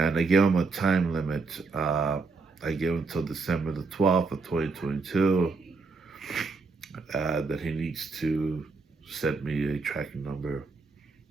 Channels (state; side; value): quieter; left; 4.2 dB